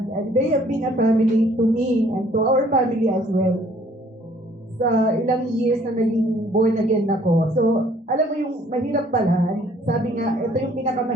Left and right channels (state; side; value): normal; both; correlation 0.59